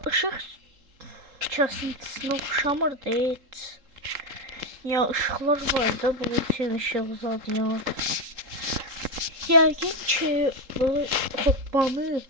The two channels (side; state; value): left; late; 3.8 ms